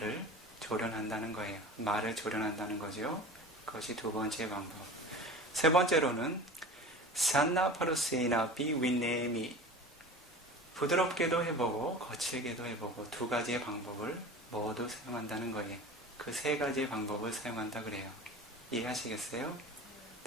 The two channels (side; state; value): both; normal; correlation 0.36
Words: 조련한다는 거예요. 말을 조련한다는 거죠. 그것이 두 번째 방법. 세 번째로는 산나 파루세나비 위네미. 부드럽게도 해보고 거칠게도 해보고 두 가지의 방법을 모두 사용한다는 거예요. 그 세 가지의 방법을 사용한다 그래요. 이해하시겠어요?